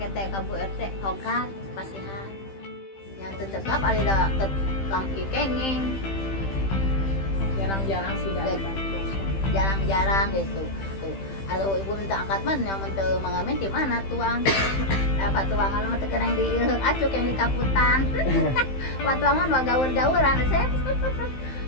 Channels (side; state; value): right; late; 15 ms